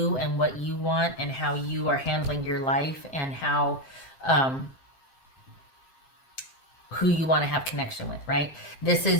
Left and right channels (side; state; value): right; late; 7.7 ms